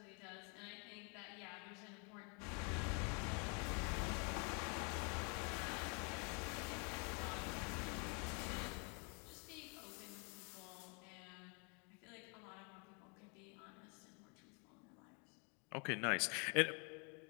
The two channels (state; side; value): quieter; right; 35.5 dB